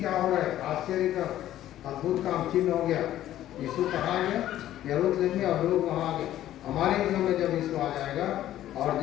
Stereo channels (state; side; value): quieter; right; 12.9 dB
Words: हो रहा है, आश्चर्य का अद्भुत काम चिन्ह हो गया। यीशु कहाँ गया? यरूशलेम में, और लोग वहाँ आ गए। हमारे जीवन में जब यीशु आ जाएगा और